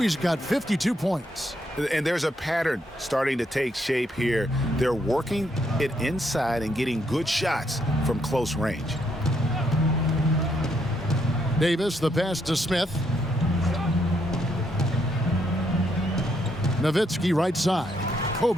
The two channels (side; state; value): both; normal; correlation 0.75